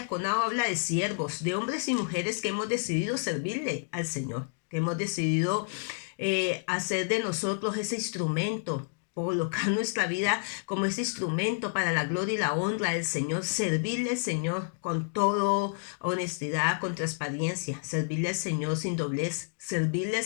habla de siervos, de hombres y mujeres que hemos decidido servirle al Señor, que hemos decidido hacer de nosotros ese instrumento, colocar nuestra vida como ese instrumento para la gloria y la honra del Señor, servirle al Señor con toda honestidad, con transparencia, servirle al Señor sin doblez, servirle al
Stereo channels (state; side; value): silent; right; digital silence